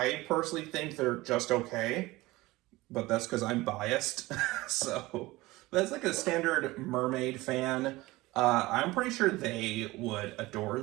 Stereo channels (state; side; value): quieter; left; 19.9 dB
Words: personally think they're just okay, but that's because I'm biased. So that's like a standard mermaid fan. I'm pretty sure they would adore